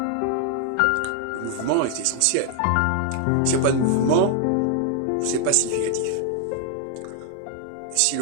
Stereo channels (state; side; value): different; both; correlation 0.00